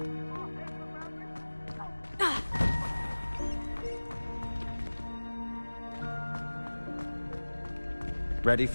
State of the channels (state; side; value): inverted; both; correlation -1.00